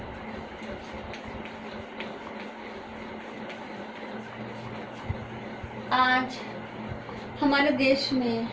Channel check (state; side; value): identical; both; correlation 1.00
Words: आज हमारे देश में